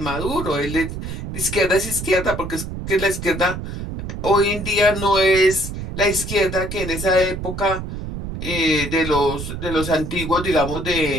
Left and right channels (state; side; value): noise; right; rumble, 7 dB below the sound